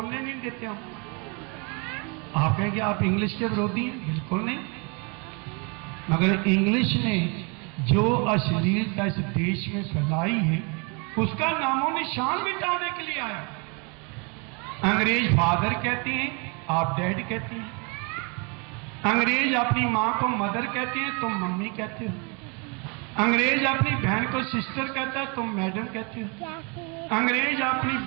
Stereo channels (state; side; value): quieter; left; 32.7 dB